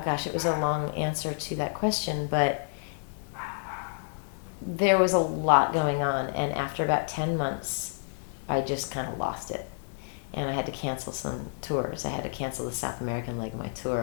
it was a long answer to that question, but there was a lot going on, and after about 10 months, I just kind of lost it. And I had to cancel some tours. I had to cancel the South American leg of my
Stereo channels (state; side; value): silent; right; digital silence